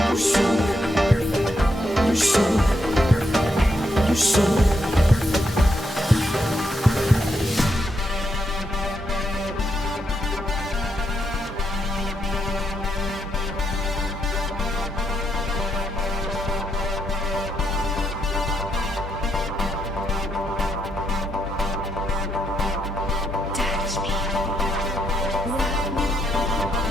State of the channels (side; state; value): both; normal; correlation 0.80